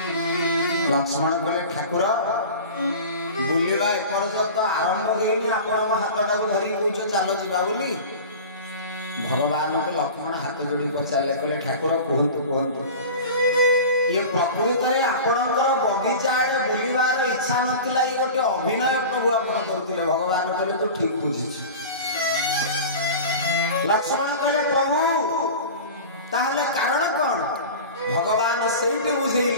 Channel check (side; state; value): both; inverted; correlation -0.34